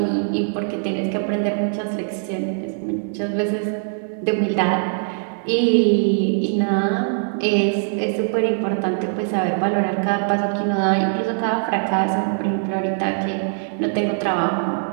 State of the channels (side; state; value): left; silent; 64 dB below the other